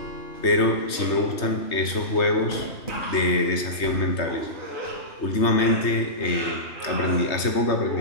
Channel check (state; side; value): late; right; 3.2 ms